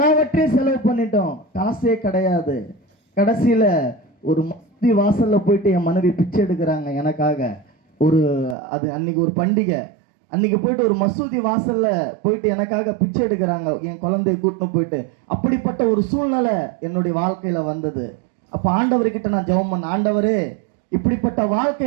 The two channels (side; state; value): left; drops out; at 8.6 s